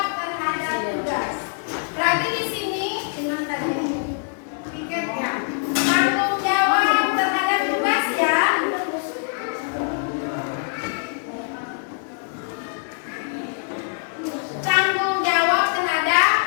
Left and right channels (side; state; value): right; silent; 57 dB below the other